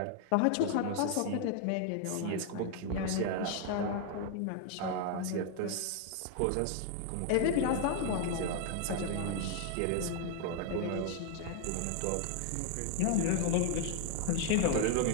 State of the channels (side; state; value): both; different; correlation 0.00